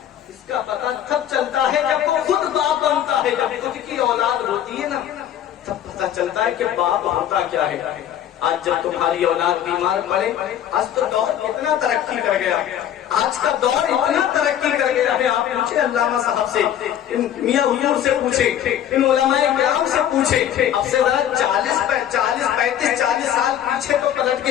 اس کا پتہ تب چلتا ہے جب وہ خود باپ بنتا ہے، جب خود کی اولاد ہوتی ہے نا، تب پتہ چلتا ہے کہ باپ ہوتا کیا ہے۔ آج جب تمہاری اولاد بیمار پڑے، آج تو دور اتنا ترقی کر گیا، آج کا دور اتنا ترقی کر گیا ہے۔ آپ پوچھے علامہ صاحب سے، میاں حضور سے پوچھے، ان علماء کرام سے پوچھے، اب سے ذرا 40 سال پیچھے تو پلٹ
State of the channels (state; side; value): quieter; right; 10.6 dB